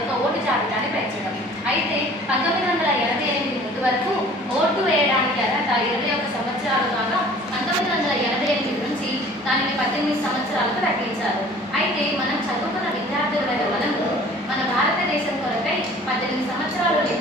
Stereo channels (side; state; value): both; normal; correlation 0.49